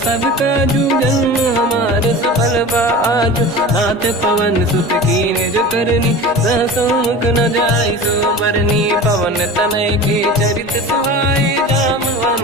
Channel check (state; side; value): normal; both; correlation 0.34